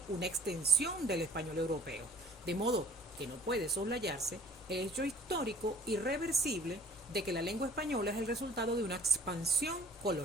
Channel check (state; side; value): normal; both; correlation 0.54